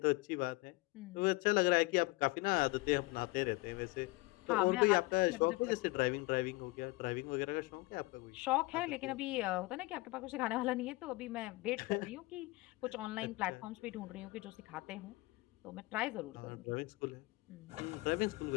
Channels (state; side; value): quieter; right; 22.8 dB